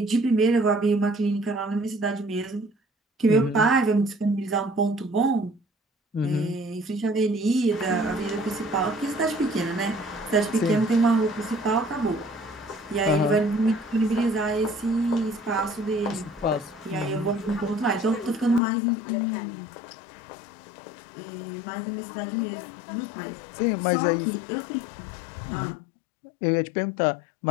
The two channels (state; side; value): drops out; right; at 18.6 s